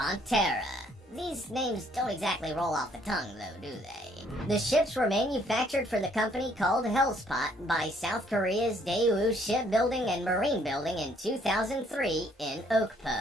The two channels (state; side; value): normal; both; correlation 0.65